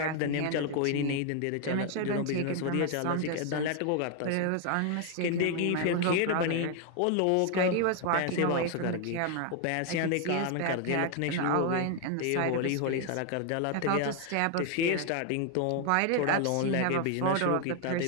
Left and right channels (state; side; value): different; both; correlation 0.00